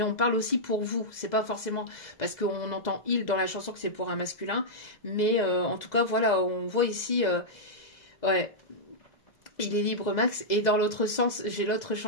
on parle aussi pour vous. C'est pas forcément parce qu'on entend il dans la chanson que c'est pour un masculin, mais en tout cas voilà, on voit ici. Ouais, il est libre Max. Et dans l'autre sens, j'ai une autre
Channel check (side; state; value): right; late; 2.0 ms